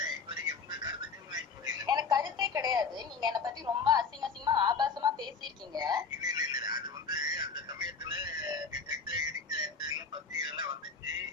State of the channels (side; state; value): right; quieter; 5.2 dB